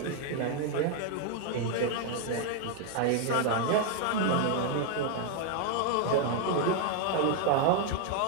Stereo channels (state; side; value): different; both; correlation 0.00